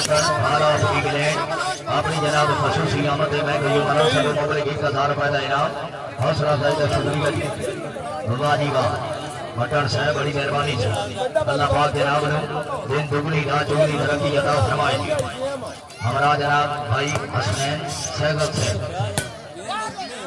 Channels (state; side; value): identical; both; correlation 1.00